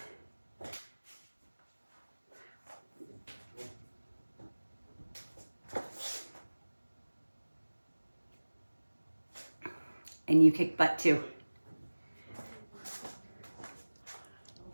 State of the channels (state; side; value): inverted; both; correlation -1.00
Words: And you kick butt too.